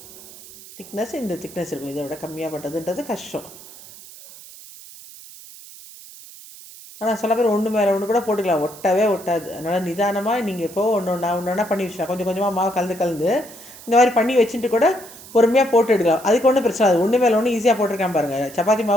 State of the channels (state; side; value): noise; right; hiss, 18 dB below the sound